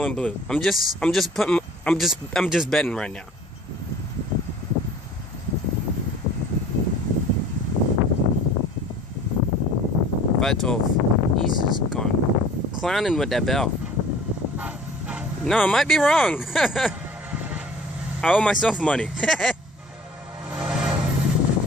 and blue. I'm just betting right now. Five 12. He's just gone clowning with that bell. No, I might be wrong. I owe myself money.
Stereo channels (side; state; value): both; normal; correlation 0.48